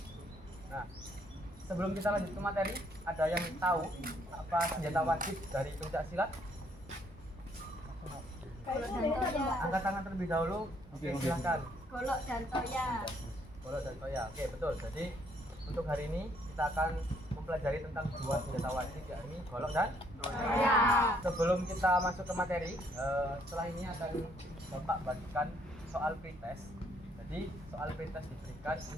Nah, sebelum kita lanjut ke materi, ada yang tahu apa senjata wajib dari pencak silat? Angkat tangan terlebih dahulu. Oke, silakan. Golok dan toya. Golok dan toya. Oke, betul. Jadi untuk hari ini kita akan mempelajari tentang dua senjata wajib, yakni golok dan Toya. sebelum kita masuk ke materi, setelah ini akan Bapak bagikan soal pretest. Jadi soal pretest diberikan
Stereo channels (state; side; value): normal; both; correlation 0.68